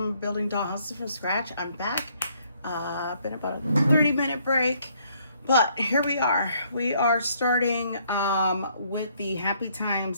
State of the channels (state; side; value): inverted; both; correlation -0.67